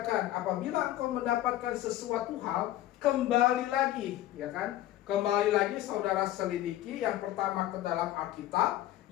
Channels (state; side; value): quieter; right; 14.1 dB